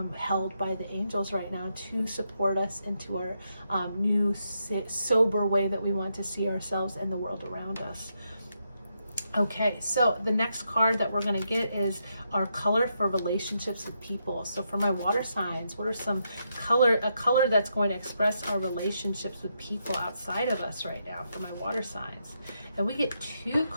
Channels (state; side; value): inverted; both; correlation -0.81